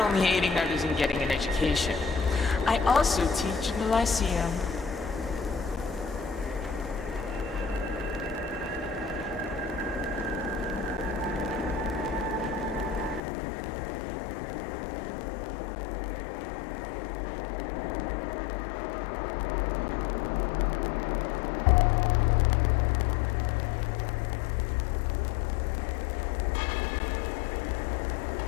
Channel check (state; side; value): drops out; right; at 13.2 s